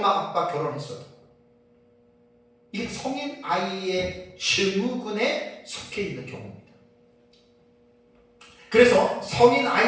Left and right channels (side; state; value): both; identical; correlation 1.00